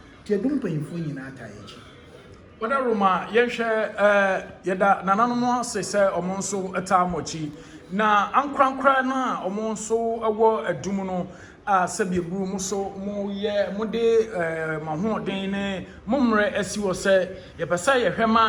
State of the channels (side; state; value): both; identical; correlation 1.00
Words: ti adum panyimfo nyina atayechi wada Roma ye hwe yeda nananom se omo nso atamochi na ankrankra na omo nso ewo adum no a sebieburu mo so mo ye mo de mahoden ne momre asiwo se ye pesa ye